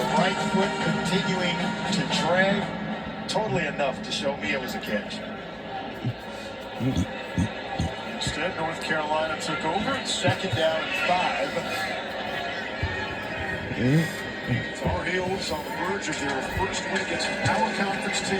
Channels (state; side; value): identical; both; correlation 1.00